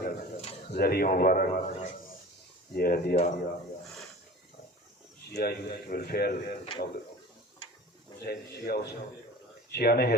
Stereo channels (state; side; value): normal; both; correlation 0.39